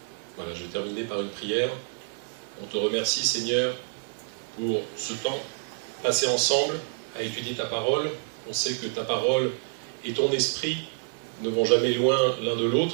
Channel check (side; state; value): left; silent; digital silence